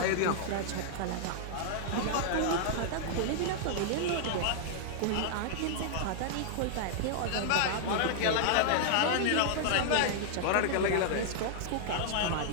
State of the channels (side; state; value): both; different; correlation -0.01